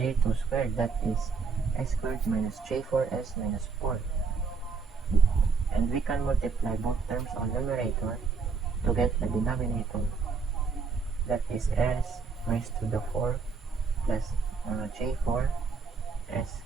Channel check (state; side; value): quieter; left; 5.1 dB